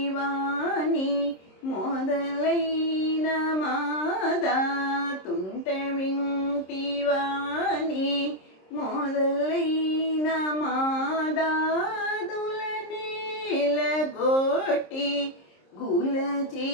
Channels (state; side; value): late; right; 26 ms